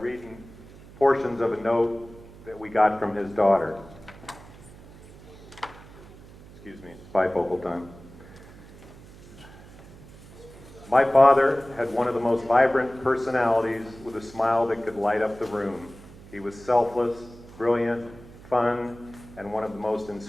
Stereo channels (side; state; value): right; noise; hum, 19 dB below the sound